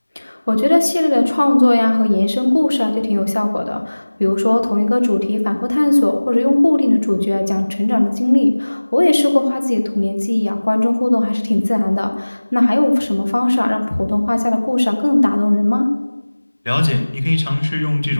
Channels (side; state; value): both; inverted; correlation -1.00